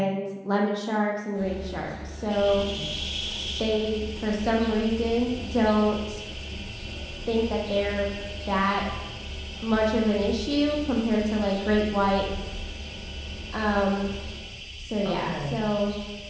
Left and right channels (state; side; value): identical; both; correlation 1.00